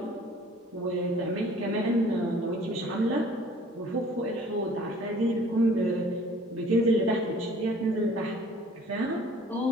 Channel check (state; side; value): normal; both; correlation 0.52